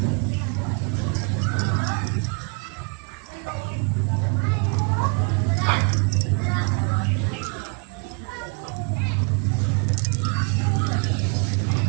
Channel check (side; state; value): left; quieter; 33.2 dB